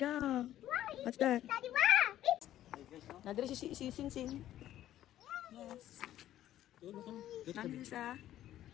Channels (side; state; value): right; quieter; 12.8 dB